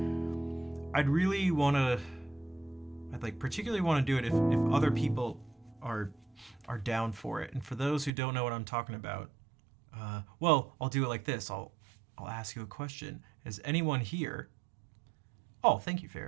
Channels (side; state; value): left; drops out; at 8.1 s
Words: I'd particularly want to do it if other people are down for it. And for those who don't know what I'm talking about, well, I'll do it like this. I'll ask you a question. Has anyone here, oh, thank you,